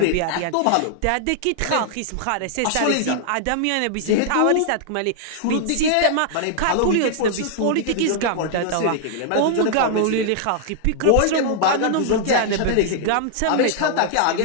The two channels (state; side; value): different; both; correlation -0.01